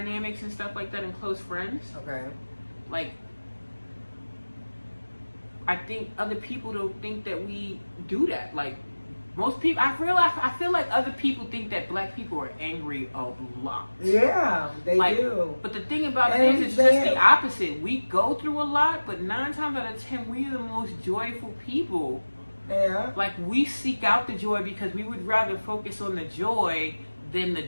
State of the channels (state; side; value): inverted; both; correlation -1.00